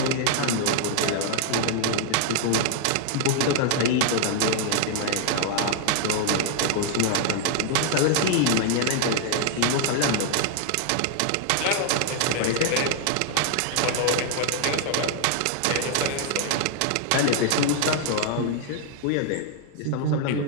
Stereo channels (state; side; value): different; both; correlation 0.00